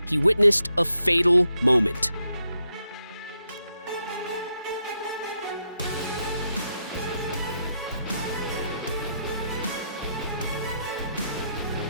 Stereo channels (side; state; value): both; inverted; correlation -0.81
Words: he witnessed a fatal moment.